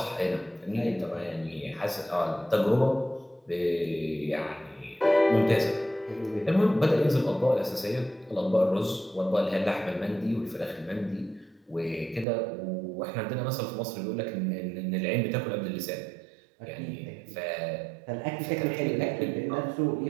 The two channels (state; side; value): drops out; left; at 12.2 s